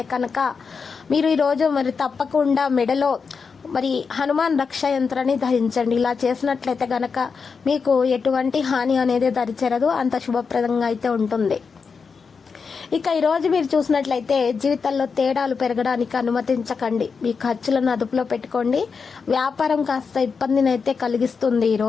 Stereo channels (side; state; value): right; quieter; 5.4 dB